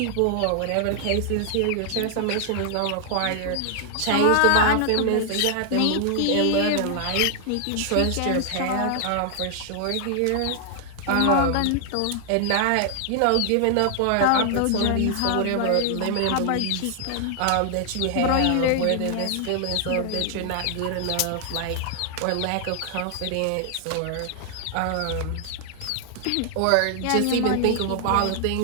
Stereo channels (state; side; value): different; both; correlation 0.00